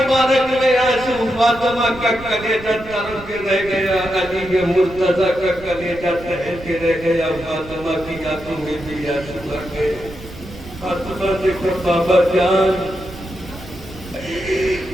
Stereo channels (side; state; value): right; noise; rumble, 16 dB below the sound